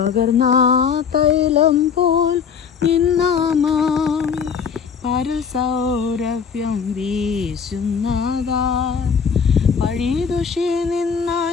തൈലം പോൽ നിന്നാമാം പരൽ സൗരഭ്യം വീശുന്നതാ. പഴിദുഷി നിന്ന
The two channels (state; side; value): quieter; right; 6.7 dB